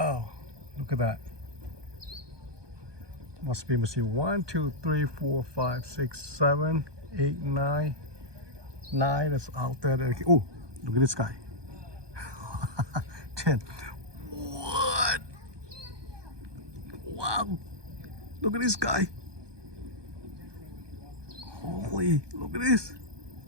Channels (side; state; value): left; late; 1.2 ms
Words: Look at that. Must be, let me see, 1, 2, 3, 4, 5, 6, 7, 8, 9. 9 that's out there. Oh, look at this guy. 10. What? Wow. Look at this guy. Holy, look at this.